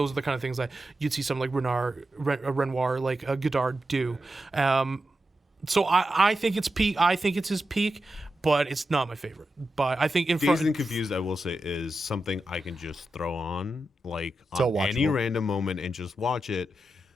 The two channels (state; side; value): normal; both; correlation 0.90